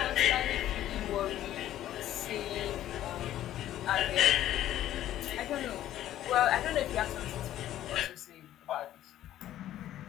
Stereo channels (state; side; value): quieter; right; 12.7 dB